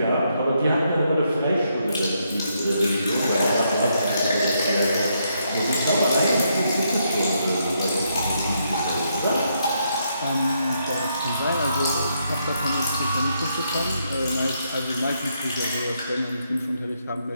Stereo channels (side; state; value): both; inverted; correlation -0.77